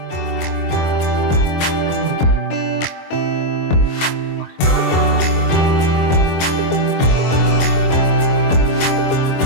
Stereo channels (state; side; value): late; right; 23 ms